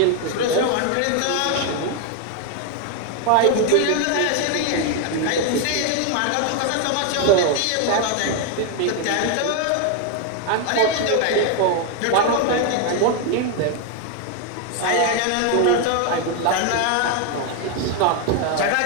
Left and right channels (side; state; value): both; different; correlation 0.01